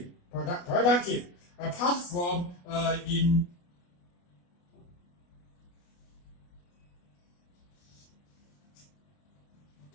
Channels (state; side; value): late; right; 29 ms